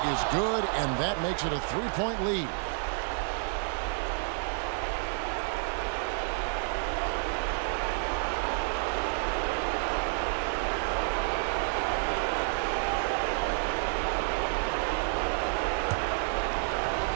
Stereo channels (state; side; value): silent; left; 58 dB below the other